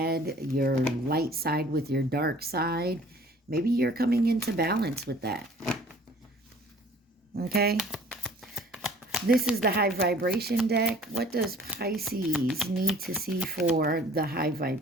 your light side with your dark side. Maybe you're coming into balance with that. Okay. This is the high vibration deck. What does Pisces need to see for the high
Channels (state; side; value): normal; both; correlation 0.51